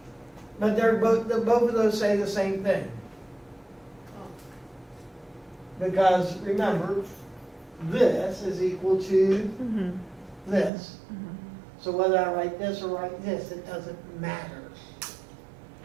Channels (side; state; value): left; drops out; at 10.7 s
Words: But they're both of those say the same thing. Because remember, this is equal to Mm-hmm. this. So whether I write this or write this, it doesn't matter.